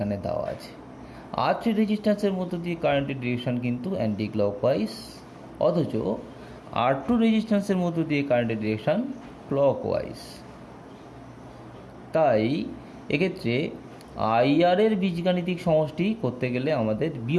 দেওয়া আছে। R3 রেজিস্ট্যান্সের মধ্য দিয়ে কারেন্টের ডিরেকশান কিন্তু অ্যান্টি ক্লকওয়াইজ, অথচ R2 রেজিস্ট্যান্সের মধ্য দিয়ে কারেন্টের ডিরেকশান ক্লকওয়াইজ। তাই এক্ষেত্রে IR এর বীজগাণিতিক সমষ্টি করতে গেলে আমাদের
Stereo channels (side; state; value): both; identical; correlation 1.00